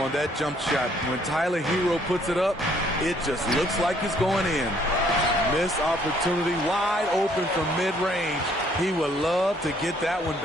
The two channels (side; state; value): both; normal; correlation 0.64